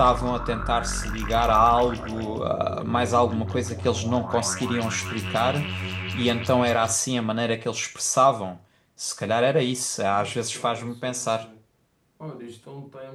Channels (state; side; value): identical; both; correlation 1.00